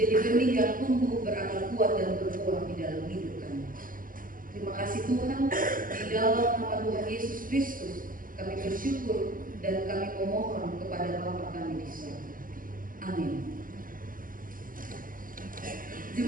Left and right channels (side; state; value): left; late; 0.40 ms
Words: benih yang tumbuh berakar kuat dan berbuah di dalam hidup kami. Terima kasih Tuhan, di dalam nama Tuhan Yesus Kristus kami bersyukur dan kami memohon kepada Bapa kami di surga. Amin.